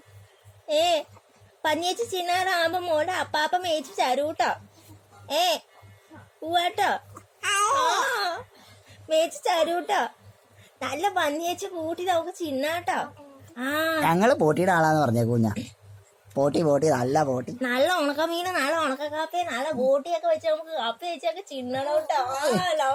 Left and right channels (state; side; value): identical; both; correlation 1.00